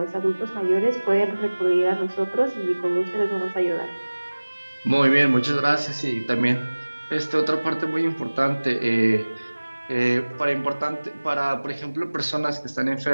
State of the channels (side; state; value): both; inverted; correlation -1.00